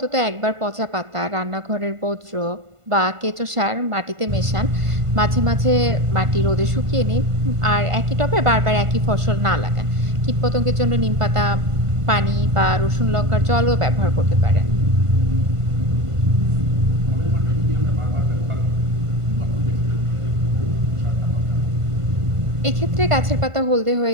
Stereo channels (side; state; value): left; late; 1.5 ms